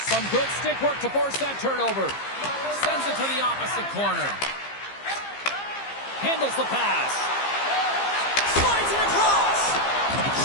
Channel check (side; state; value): right; late; 15 ms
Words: Some good stick work to force that turnover. Sends it to the opposite corner. Handles the pass. Slides it across.